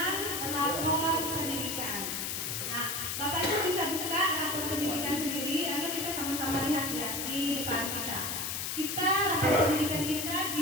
rapor pendidikan. Nah, Bapak Ibu bisa buka rapor pendidikan sendiri atau kita sama-sama lihat ya di depan kita. Kita rapor pendidikan kita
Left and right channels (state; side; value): noise; left; hiss, 2 dB below the sound